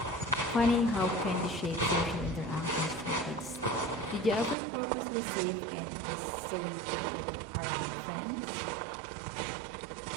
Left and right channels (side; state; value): left; drops out; at 4.5 s